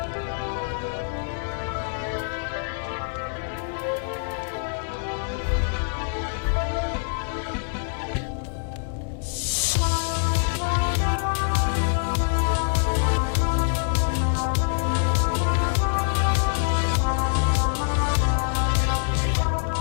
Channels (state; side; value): silent; right; digital silence